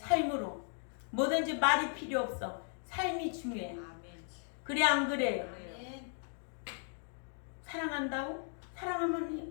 뭐든지 말이 필요 없어. 삶이 중요해. 그래 안 그래요? 사랑한다고?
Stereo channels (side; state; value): right; silent; 53 dB below the other